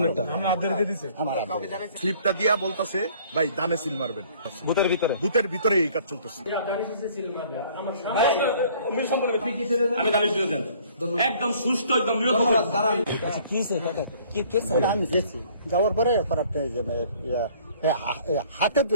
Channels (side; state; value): both; inverted; correlation -0.56